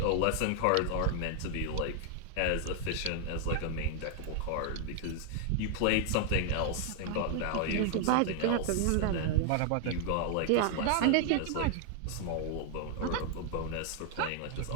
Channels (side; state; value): both; different; correlation 0.00